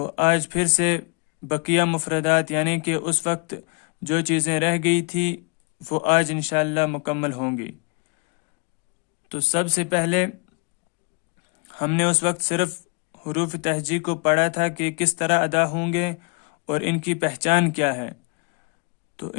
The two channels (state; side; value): quieter; right; 31.7 dB